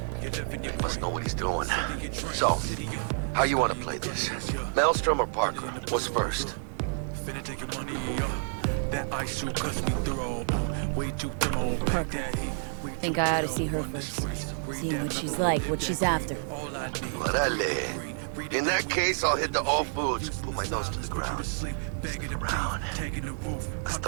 He must know what he's doing. So, how you want to play this? Maelstrom or Parker? What's first? Parker. Think I ought to see her first. See what she's like, what she's after. Orale. In that case, I'll hit the All Foods. Put my nose to the ground. Stick around.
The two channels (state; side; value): silent; left; digital silence